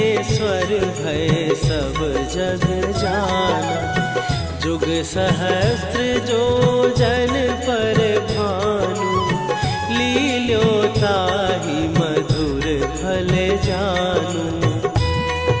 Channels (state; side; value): identical; both; correlation 1.00